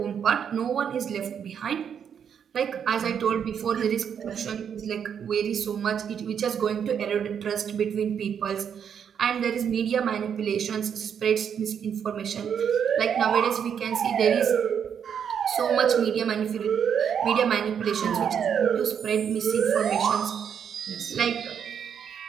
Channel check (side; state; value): left; quieter; 7.9 dB